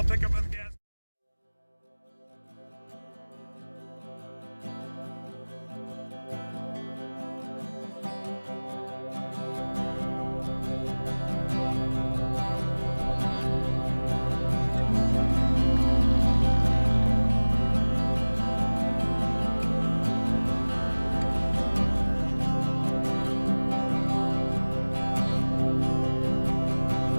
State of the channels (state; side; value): inverted; both; correlation -1.00